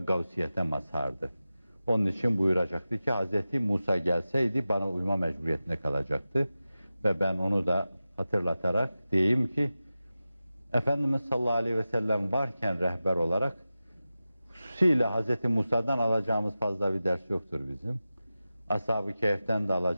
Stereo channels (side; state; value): both; inverted; correlation -0.94